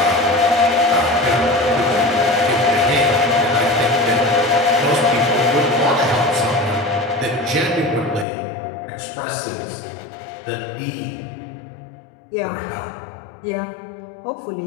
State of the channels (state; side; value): drops out; right; at 8.2 s